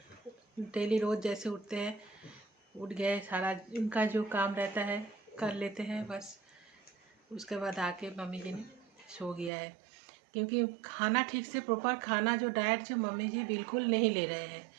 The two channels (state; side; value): drops out; left; at 9.5 s